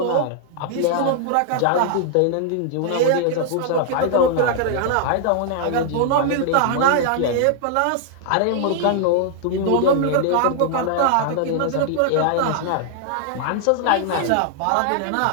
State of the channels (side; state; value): both; different; correlation -0.01